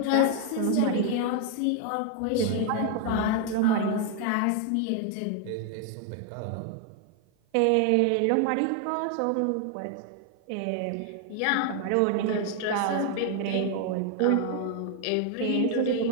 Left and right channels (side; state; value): both; different; correlation 0.00